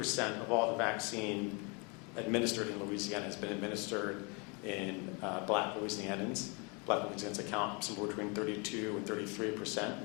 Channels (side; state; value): right; quieter; 31.8 dB